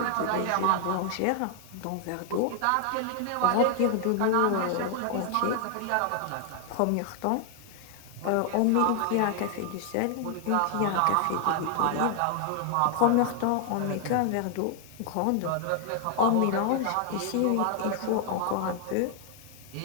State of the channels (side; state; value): both; different; correlation 0.00